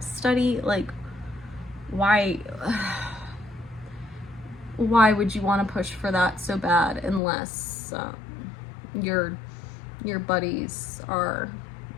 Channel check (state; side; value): drops out; right; at 7.2 s